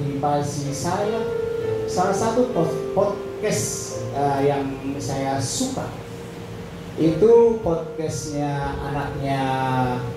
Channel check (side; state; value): both; identical; correlation 1.00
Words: saya. Salah satu podcast podcast yang saya suka itu podcastnya anaknya